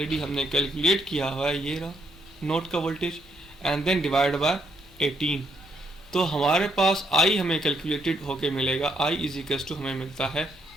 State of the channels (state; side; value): normal; both; correlation 0.74